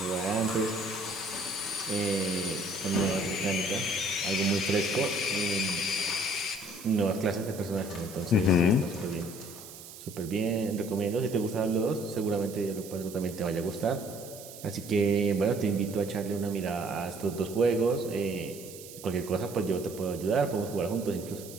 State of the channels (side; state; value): right; noise; hiss, 15 dB below the sound